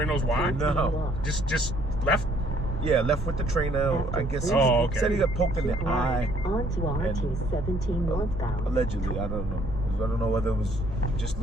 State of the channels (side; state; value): both; normal; correlation 0.63